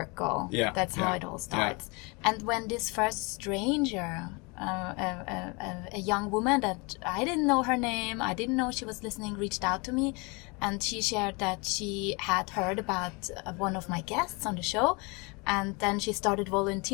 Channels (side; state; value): right; quieter; 29.1 dB